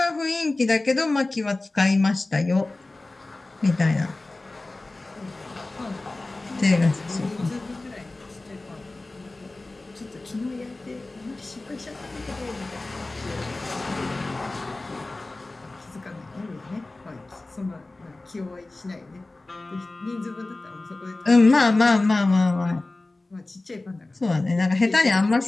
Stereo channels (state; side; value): quieter; right; 3.0 dB